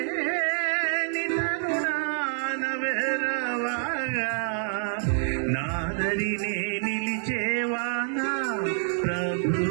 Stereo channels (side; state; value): left; silent; 60 dB below the other